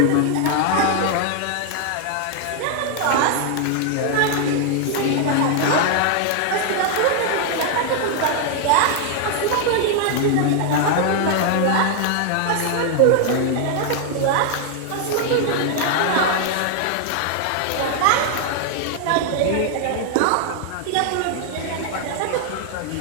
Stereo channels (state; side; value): different; both; correlation 0.00